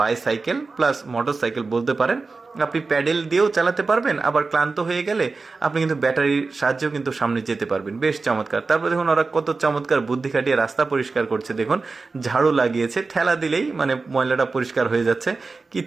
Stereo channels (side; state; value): left; quieter; 4.0 dB